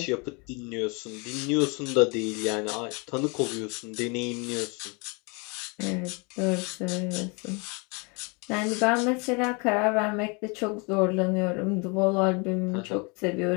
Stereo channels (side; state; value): right; quieter; 31.5 dB